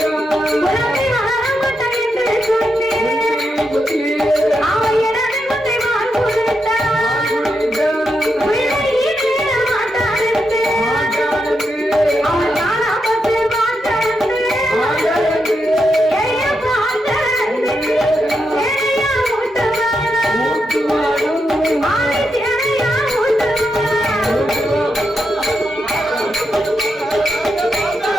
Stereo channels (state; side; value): normal; both; correlation 0.84